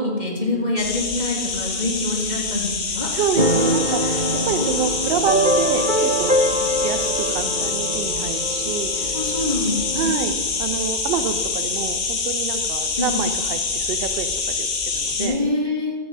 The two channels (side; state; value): left; late; 1.9 ms